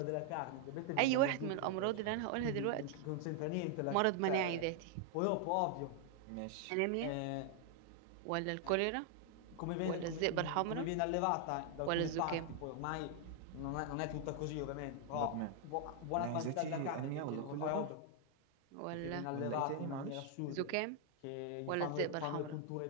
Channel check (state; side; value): different; both; correlation 0.00